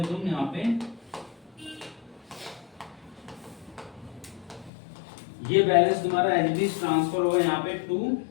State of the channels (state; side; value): drops out; right; at 4.7 s